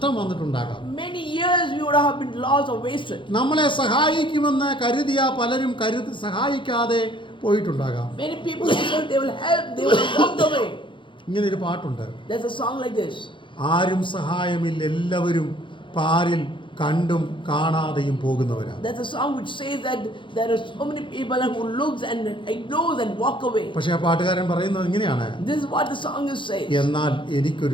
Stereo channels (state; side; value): late; right; 0.24 ms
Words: വന്നിട്ടുണ്ടാകാം. Many years you would have been lost or wasted. നമ്മളെ സഹായിക്കുമെന്ന് കരുതിയ പലരും സഹായിക്കാതെ പോയിട്ടുണ്ടാകാം. Many people said they will help, they will walk away. ഇങ്ങനെ ഒരു പാട്ടുണ്ട്. There's a song like this. ആരും സഹായമില്ല, എല്ലാവരും പാരിൽ കണ്ടും കാണാതെയും പോകുന്നവരാണ്. There's a song which says that there are so many people who looks and ignores and walk away. പക്ഷേ ആ പാട്ടുകാരൻ പറയുന്നത് ഇങ്ങനെയാണ്, This is what the song is saying. എന്നാൽ